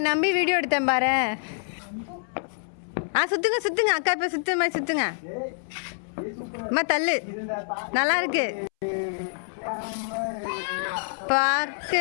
நம்பி வீடியோ எடுத்தேன் பாரு. சுத்துங்க சுத்துங்க அக்கா இப்ப சுத்து மாதிரி சுத்துங்க. அம்மா தள்ளு. நல்லா இருக்கு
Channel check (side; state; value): right; silent; 60 dB below the other